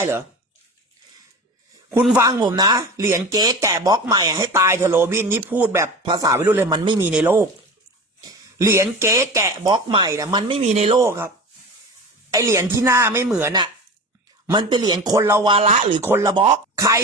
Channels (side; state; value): both; normal; correlation 0.32